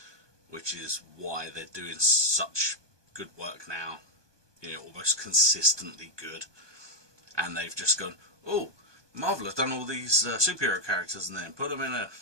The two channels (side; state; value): left; late; 1.2 ms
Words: which is why they're doing such good work now, almost consistently good. And they've just gone, oh, Marvel have done all these superhero characters and then put them in a